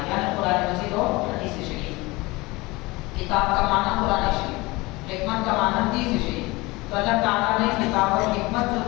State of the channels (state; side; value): quieter; right; 22.5 dB